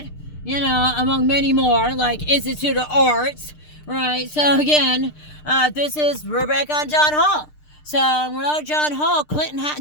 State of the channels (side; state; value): right; late; 6.6 ms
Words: you know, among many more, like Institute of Arts. Right, so again, we're back on John Hall. So without John Hall, Clinton